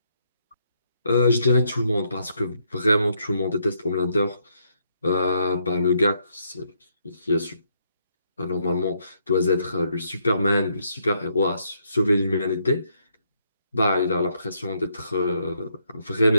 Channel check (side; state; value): both; inverted; correlation -0.74